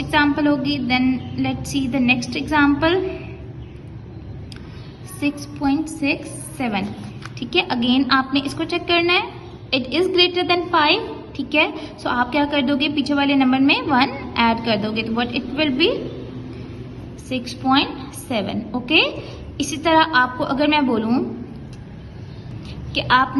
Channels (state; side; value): identical; both; correlation 1.00